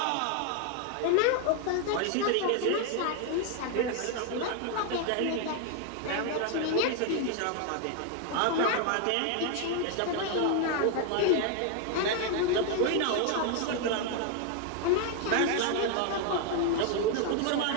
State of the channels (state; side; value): different; both; correlation 0.01